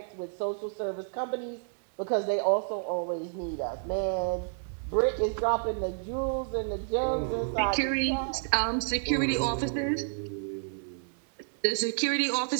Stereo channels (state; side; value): silent; left; digital silence